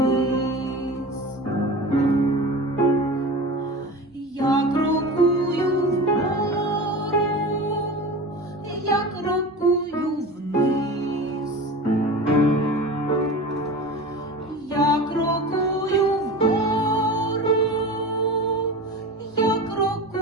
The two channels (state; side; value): normal; both; correlation 0.32